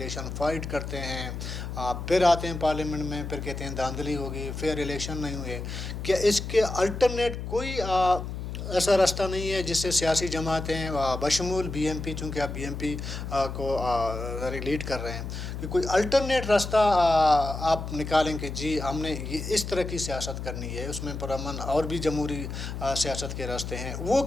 فائٹ کرتے ہیں، پھر آتے ہیں پارلیمنٹ میں، پھر کہتے ہیں دھاندلی ہوگی، فیئر الیکشن نہیں ہوئے۔ کیا اس کے الٹرنیٹ کوئی ایسا راستہ نہیں ہے جس سے سیاسی جماعتیں بشمول بی ایم پی، چونکہ آپ بی ایم پی کو لیڈ کر رہے ہیں، کہ کوئی الٹرنیٹ راستہ آپ نکالیں کہ جی ہم نے یہ اس طرح کی سیاست کرنی ہے، اس میں پرامن اور بھی جمہوری سیاست کے راستے ہیں، وہ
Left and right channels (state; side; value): noise; left; hum, 6 dB below the sound